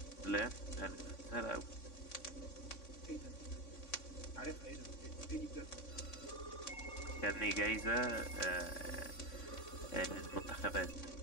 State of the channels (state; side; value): late; right; 3.6 ms